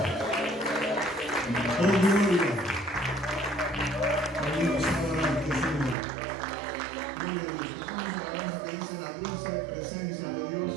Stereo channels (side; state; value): left; drops out; at 6.0 s